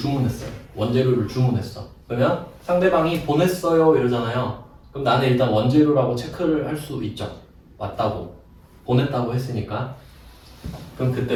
원재료를 주문했어. 그러면 상대방이 보냈어요 이러잖아요. 그럼 나는 일단 원재료라고 체크를 할 수 있죠. 맞다고 보냈다고 했으니까. 그럼 그때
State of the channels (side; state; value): both; identical; correlation 1.00